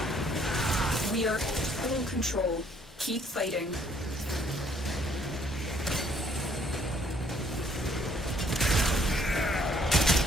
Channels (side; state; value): both; normal; correlation 0.64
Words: We are full control. Keep fighting.